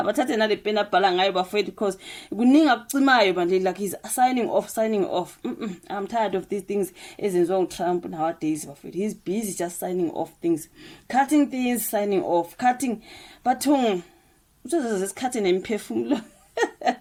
nale pen abhala ngayo bafethu because kuninga kucimayo manje like he's signing off. I'm tired of these things ezenziwa uTrump nowadays bafethu. He's busy just signing off things, cutting things, signing off, cutting bathung uzoze isikhathi nemphefumulo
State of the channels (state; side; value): identical; both; correlation 1.00